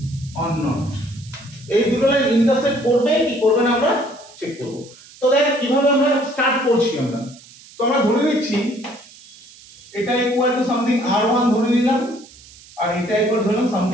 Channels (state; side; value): noise; right; hiss, 22 dB below the sound